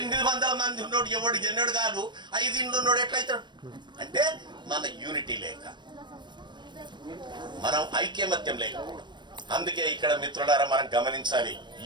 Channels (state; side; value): late; left; 0.22 ms